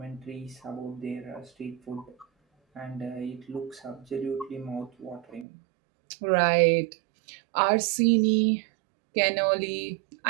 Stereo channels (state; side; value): drops out; left; at 5.5 s